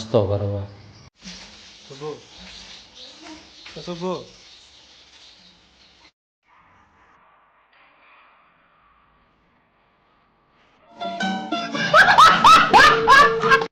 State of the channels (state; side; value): identical; both; correlation 1.00